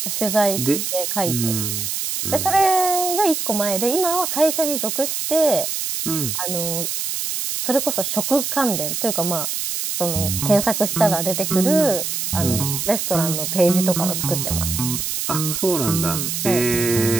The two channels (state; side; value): noise; right; hiss, 2 dB below the sound